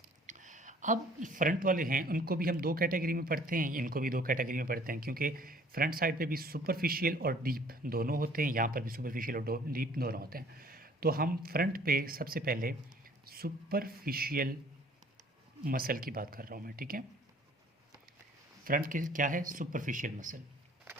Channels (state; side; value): normal; both; correlation 0.55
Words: अब फ्रंट वाले हैं उनको भी हम दो कैटेगरी में पढ़ते हैं, इनको भी दो कैटेगरी में पढ़ते हैं, क्योंकि फ्रंट साइड पे भी सुपरफिशियल और डीप दोनों होते हैं, यहाँ पर भी सुपरफिशियल और डीप दोनों होते हैं। तो हम फ्रंट पे सबसे पहले सुपरफिशियल मसल की बात कर रहा हूँ मैं, ठीक है। फ्रंट की क्या है, सुपरफिशियल मसल।